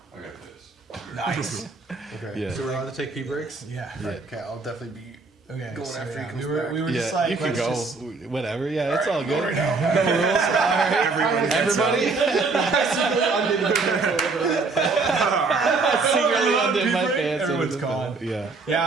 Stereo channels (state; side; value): quieter; left; 4.0 dB